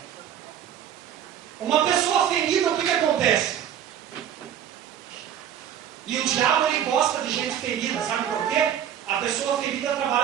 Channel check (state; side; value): quieter; left; 9.9 dB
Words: Uma pessoa ferida, o que acontece? E o diabo, ele gosta de gente ferida, sabe por quê? A pessoa ferida